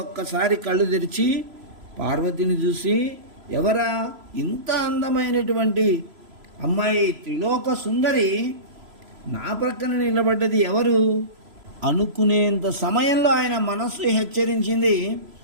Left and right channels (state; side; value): late; left; 3.0 ms